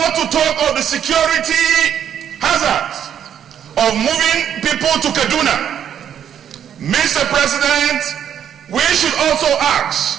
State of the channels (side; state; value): left; quieter; 9.3 dB